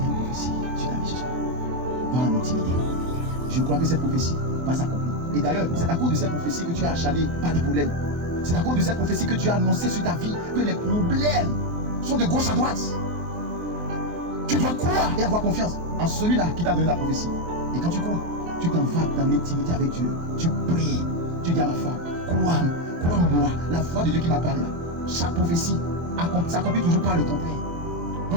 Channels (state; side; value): late; left; 24 ms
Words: y a une prophétie sur ta vie ce soir? Dans l'intimité. Je crois que cette prophétie va s'accomplir. Et d'ailleurs, c'est à cause de cette prophétie que tu as achalé par des problèmes. C'est à cause de cette prophétie que tu as annoncé sur ta vie que les problèmes sont de gauche à droite. Tu dois croire et avoir confiance en celui-là qui t'a donné la prophétie. Et quand tu crois, tu t'en vas dans l'intimité avec Dieu. Tu pries. Tu dis à ma femme, crois-moi, la voix de Dieu qui m'a parlé là. Chaque prophétie s'accomplit toujours par le contraire.